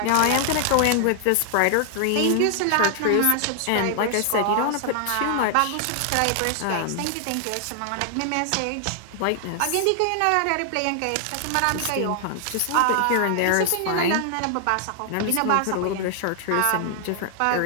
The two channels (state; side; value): different; both; correlation 0.00